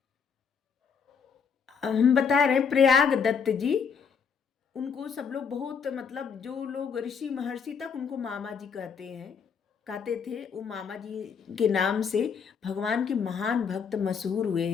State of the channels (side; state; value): right; quieter; 6.3 dB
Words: हम बता रहे हैं प्रयाग दत्त जी, उनको सब लोग बहुत, मतलब जो लोग ऋषि महर्षि तक उनको मामा जी कहते थे। वो मामा जी के नाम से भगवान के महान भक्त मशहूर हुए